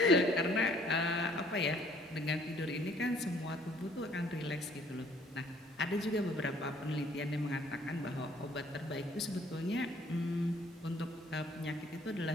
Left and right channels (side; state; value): both; normal; correlation 0.60